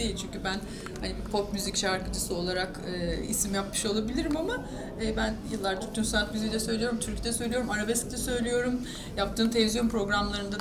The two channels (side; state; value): both; identical; correlation 1.00